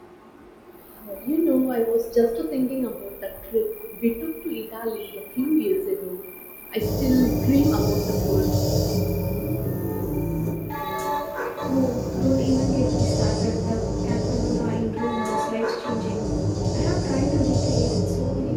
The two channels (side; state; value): both; identical; correlation 1.00